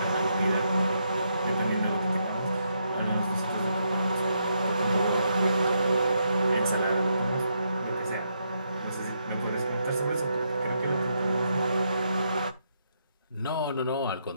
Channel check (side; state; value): both; inverted; correlation -0.78